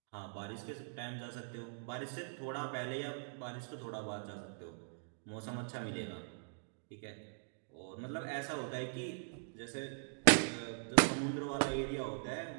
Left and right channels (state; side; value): silent; left; digital silence